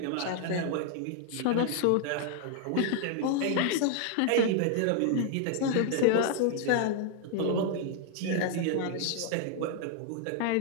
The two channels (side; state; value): both; different; correlation 0.00